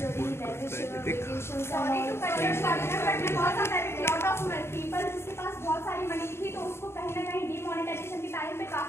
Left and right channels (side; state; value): right; late; 0.12 ms